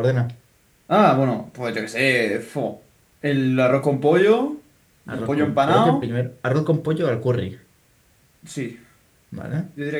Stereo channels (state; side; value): identical; both; correlation 1.00